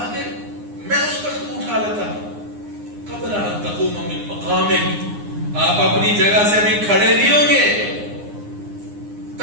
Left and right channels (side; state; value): left; late; 9.7 ms